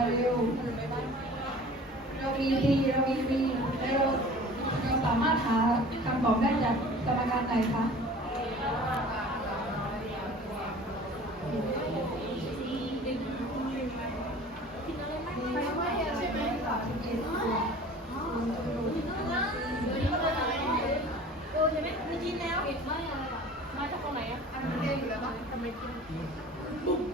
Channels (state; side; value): normal; both; correlation 0.44